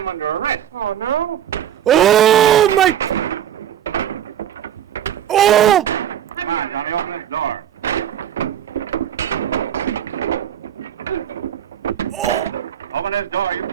under arrest. Oh, no? Oh my! Oh! Come on, Johnny, open that door. Oh! Open that door. You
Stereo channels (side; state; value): left; quieter; 10.3 dB